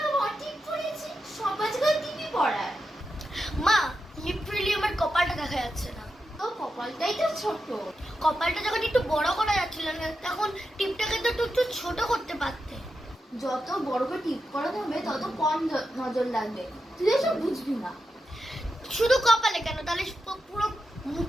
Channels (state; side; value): normal; both; correlation 0.88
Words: ঠিক করেছি, সবাই জায়গায় টিভি পড়ায়। মা লিটারালি আমার কপালটা দেখা যাচ্ছে না। তো কপালটাই তো ছোট। কপালটা যখন একটু বড় করা যাচ্ছিল না তখন টিপটাকে তো একটু ছোট করতে পারতে। যত বড় করে টিপ করাতে হবে তত কম নজর লাগবে, তুই এসব বুঝবি না। শুধু কপালে কেন, তাহলে পুরো